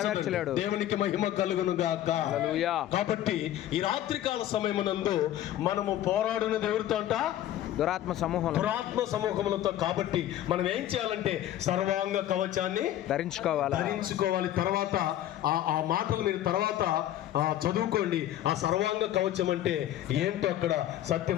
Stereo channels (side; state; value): right; quieter; 12.7 dB